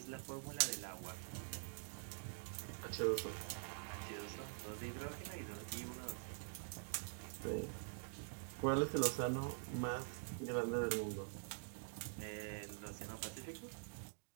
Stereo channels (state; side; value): silent; left; digital silence